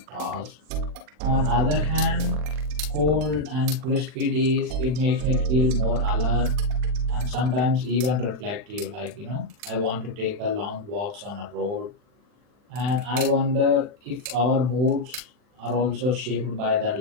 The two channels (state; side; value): late; left; 40 ms